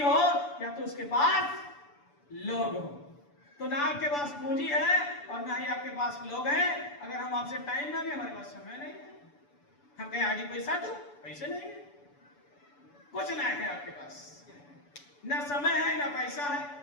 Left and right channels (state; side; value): late; right; 6.9 ms